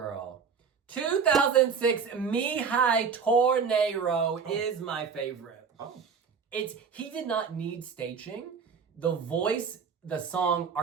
2006 Mihai Tornado is my favorite. Oh. He did not need staging. The voice, the song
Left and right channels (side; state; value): left; quieter; 6.0 dB